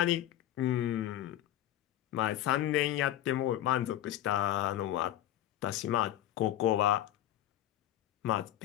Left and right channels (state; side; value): quieter; right; 12.9 dB